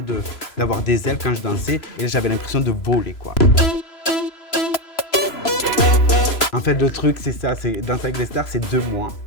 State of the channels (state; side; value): late; right; 3.0 ms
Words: d'avoir des ailes quand je dansais. Et j'avais l'impression de voler, quoi. En fait, le truc, c'est ça, c'est Danser avec les stars, c'est 2 mois.